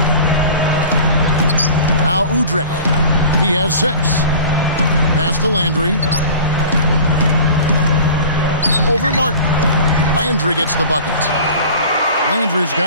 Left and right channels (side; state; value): both; inverted; correlation -0.41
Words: Now Udrih. He has 6. Pass to Landry. Over Martin. Landry gets the bucket. Landry's